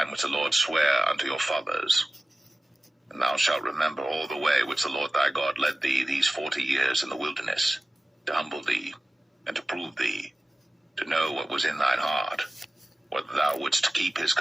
which the Lord sware unto your fathers. And thou shalt remember all the way which the Lord thy God led thee these 40 years in the wilderness, to humble thee, and to prove thee, to know what was in thine heart, whether thou wouldst keep his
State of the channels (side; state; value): both; normal; correlation 0.96